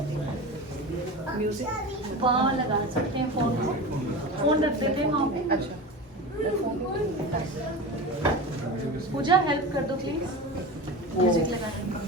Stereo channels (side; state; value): both; normal; correlation 0.29